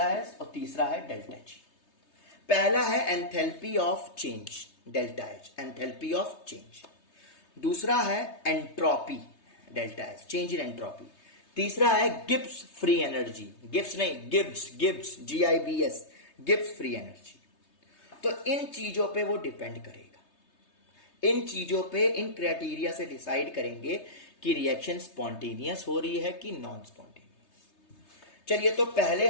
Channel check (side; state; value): right; late; 3.3 ms